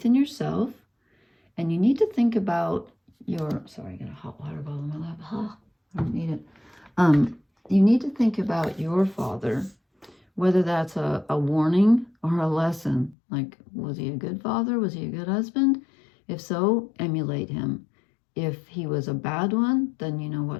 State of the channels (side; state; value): right; drops out; at 13.2 s